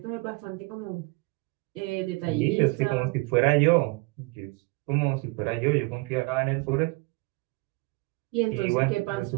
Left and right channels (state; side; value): quieter; left; 26.5 dB